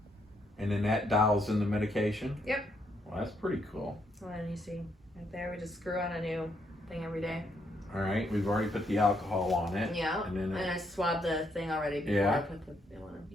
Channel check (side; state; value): both; normal; correlation 0.75